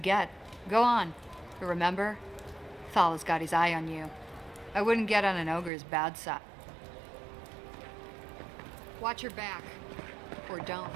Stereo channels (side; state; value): left; drops out; at 5.7 s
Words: Go on. But remember, Thal's got his eye on you. I wouldn't get on an ogre's bad side. Watch your back. Or